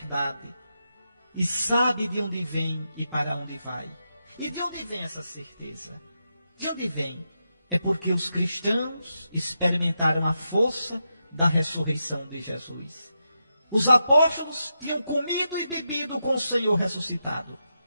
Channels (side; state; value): both; inverted; correlation -0.87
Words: E sabe de onde vem e para onde vai. E de onde vem essa certeza? De onde vem? É porque os cristãos experimentaram a força da ressurreição de Jesus. Os apóstolos tinham comido e bebido com o Senhor ressuscitado.